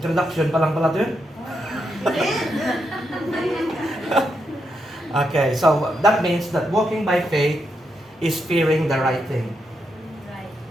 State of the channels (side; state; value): both; normal; correlation 0.82